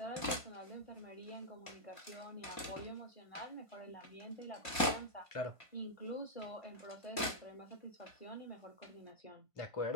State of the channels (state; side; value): late; right; 2.2 ms